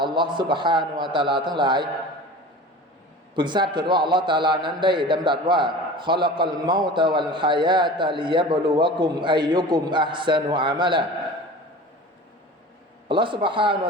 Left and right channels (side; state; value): both; normal; correlation 0.37